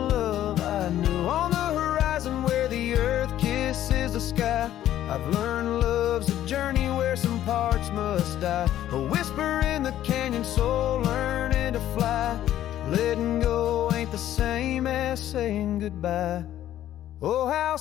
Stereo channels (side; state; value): right; quieter; 12.3 dB